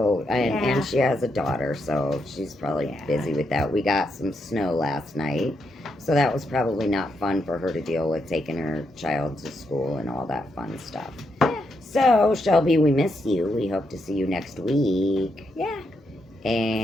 Yeah. and she has a daughter, so she's probably busy with that. We got some snow last night, so that was probably not fun for her to deal with, taking her child to school and all that fun stuff. Yeah. So Shelby, we miss you. We hope to see you next week. Yeah.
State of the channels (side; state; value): both; normal; correlation 0.81